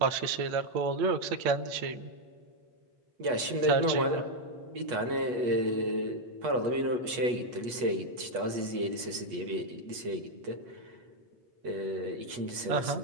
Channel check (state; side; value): late; left; 8.2 ms